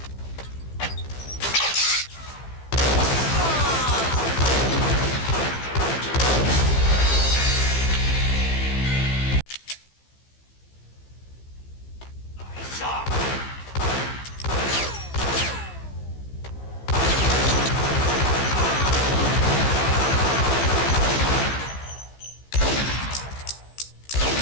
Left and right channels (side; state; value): right; late; 15 ms